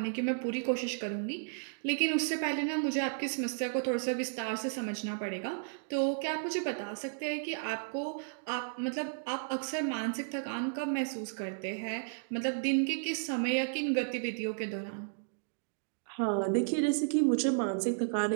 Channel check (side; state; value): left; silent; digital silence